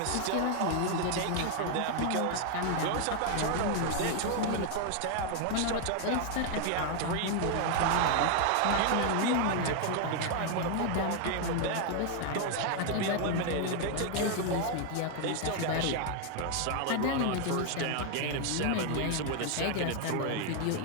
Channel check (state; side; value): different; both; correlation 0.00